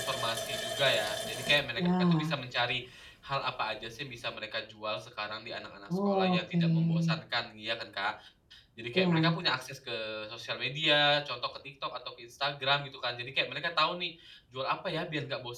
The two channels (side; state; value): both; identical; correlation 1.00